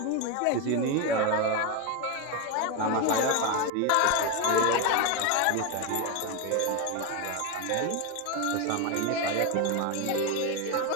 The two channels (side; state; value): both; different; correlation 0.02